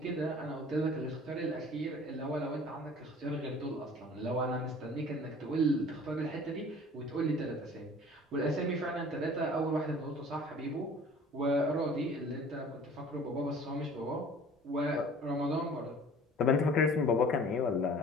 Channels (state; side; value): normal; both; correlation 0.47